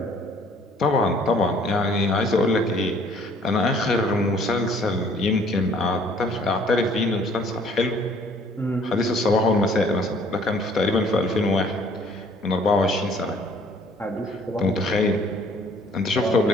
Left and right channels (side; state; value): both; normal; correlation 0.58